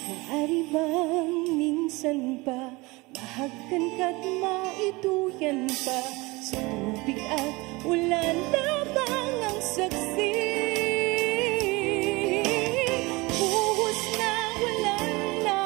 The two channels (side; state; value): left; quieter; 23.6 dB